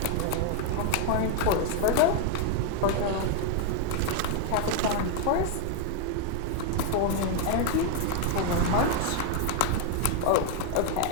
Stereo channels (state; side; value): different; both; correlation 0.00